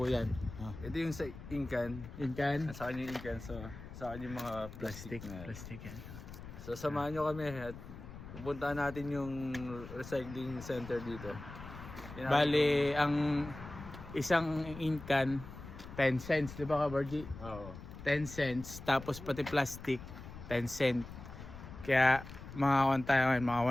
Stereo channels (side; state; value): left; noise; rumble, 13 dB below the sound